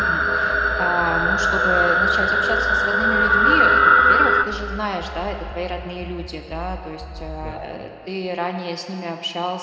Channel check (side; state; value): both; identical; correlation 1.00